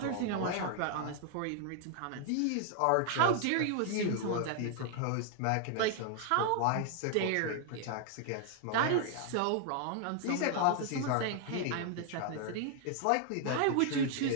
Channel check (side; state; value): both; different; correlation 0.00